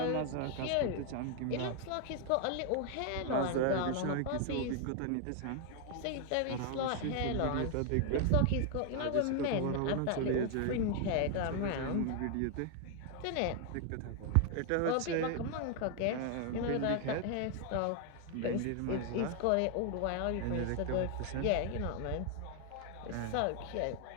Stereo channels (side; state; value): both; different; correlation 0.00